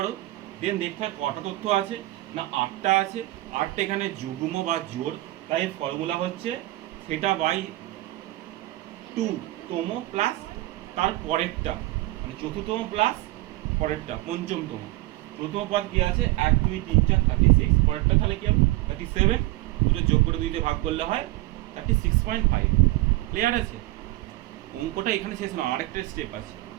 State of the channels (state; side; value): quieter; left; 18.7 dB